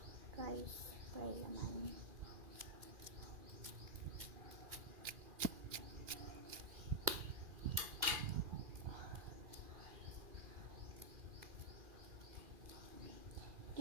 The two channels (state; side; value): late; left; 2.4 ms